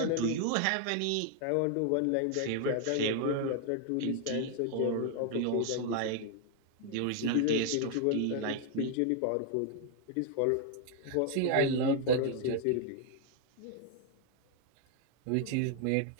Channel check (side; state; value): both; different; correlation 0.00